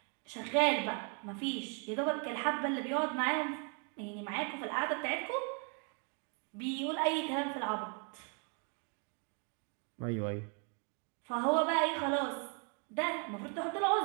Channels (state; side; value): quieter; left; 38.3 dB